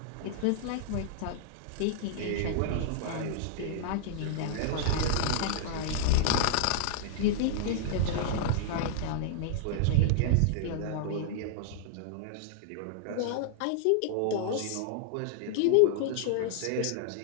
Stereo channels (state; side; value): different; both; correlation -0.01